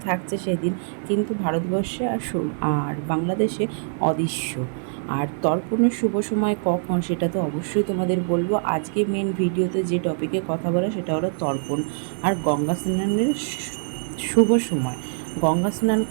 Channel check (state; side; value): silent; left; 63 dB below the other